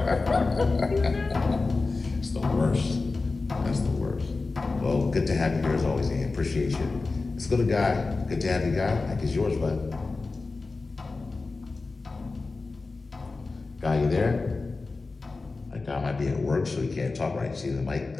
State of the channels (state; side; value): quieter; right; 3.8 dB